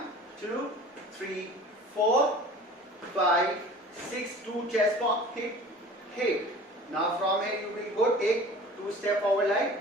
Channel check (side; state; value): both; normal; correlation 0.43